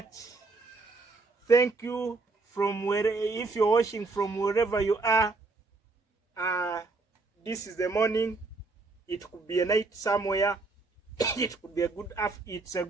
Thank you from if you're watching from wherever you are. This is the morning. It could be a night somewhere. It could be a good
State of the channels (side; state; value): left; quieter; 3.7 dB